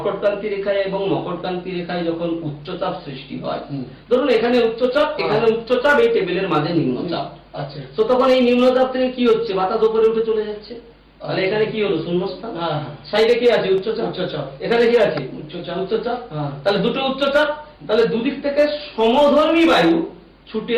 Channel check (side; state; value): both; identical; correlation 1.00